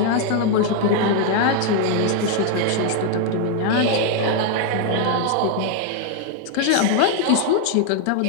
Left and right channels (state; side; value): different; both; correlation 0.00